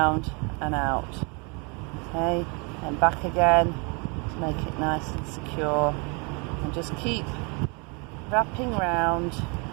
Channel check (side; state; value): left; quieter; 32.4 dB